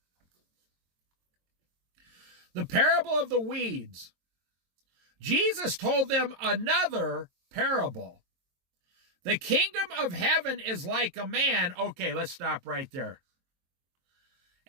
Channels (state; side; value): late; left; 22 ms